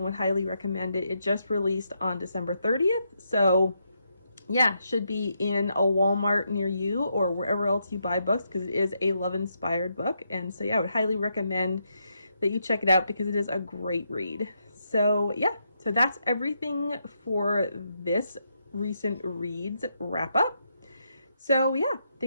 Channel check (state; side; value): inverted; both; correlation -0.80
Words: would highly recommend it. It just released on December 30th, so yeah, should be in a Walmart near you or wherever else you buy books, because it is a love-inspired book. And so yeah, I would highly recommend that you check it out because it is a great read. So yeah, so that's everything for this recent reads wrap up. So yeah,